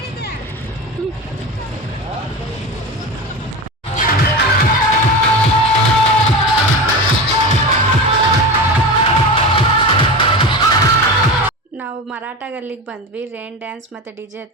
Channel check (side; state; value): both; normal; correlation 0.26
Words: ನಾವು ಮರಾಠ ಗಲ್ಲಿಗೆ ಬಂದ್ವಿ. ರೈನ್ ಡ್ಯಾನ್ಸ್ ಮತ್ತು DJ